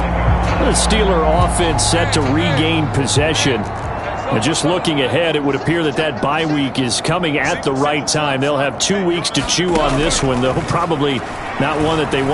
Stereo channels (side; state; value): both; identical; correlation 1.00